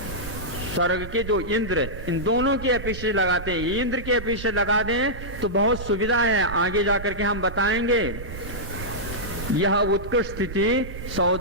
स्वर्ग के जो इंद्र, इन दोनों की अपेक्षा लगाते हैं। इंद्र की अपेक्षा लगा दें तो बहुत सुविधा है, आगे जाकर के हम बताएंगे। यह उत्कृष्ट स्थिति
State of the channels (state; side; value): noise; right; rumble, 10 dB below the sound